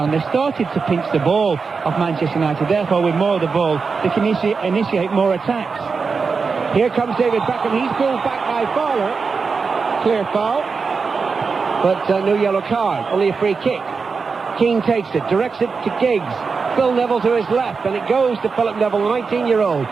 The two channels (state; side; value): quieter; left; 5.0 dB